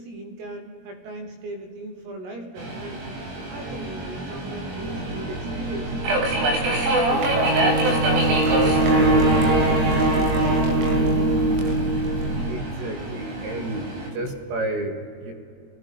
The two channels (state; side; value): late; left; 22 ms